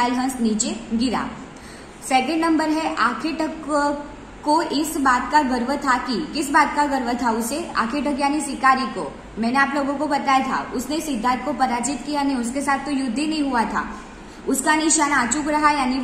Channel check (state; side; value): identical; both; correlation 1.00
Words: हंस नीचे गिरा। सेकेंड नंबर है, आखेटक को इस बात का गर्व था कि। किस बात का गर्व था उसे? आखेटक यानी शिकारी को। मैंने आप लोगों को बताया था, उसने सिद्धार्थ को पराजित किया नहीं, उसके साथ तो युद्ध ही नहीं हुआ था। उसका निशाना अचूक रहा, यानी